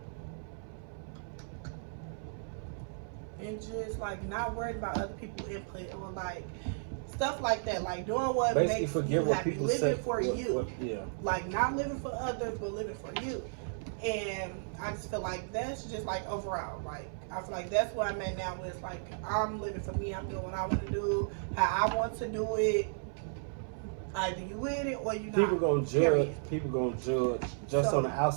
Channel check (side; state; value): left; silent; 55 dB below the other